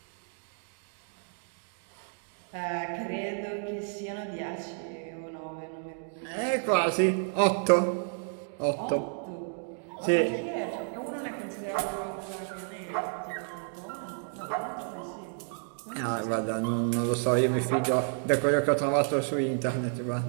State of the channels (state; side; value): silent; left; 57 dB below the other